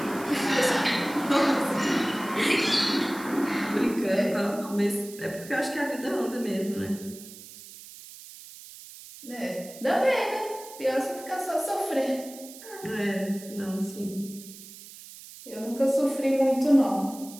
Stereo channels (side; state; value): right; noise; hiss, 16 dB below the sound